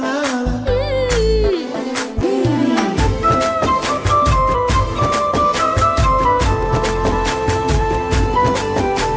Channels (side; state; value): both; identical; correlation 1.00